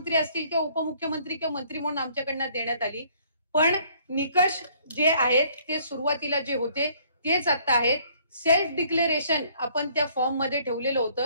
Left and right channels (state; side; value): inverted; both; correlation -0.61